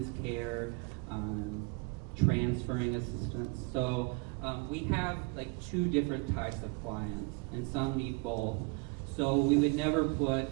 care, transferring assistance. So we have like two different types of clients, and some need both. So we would never put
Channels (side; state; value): left; quieter; 28.6 dB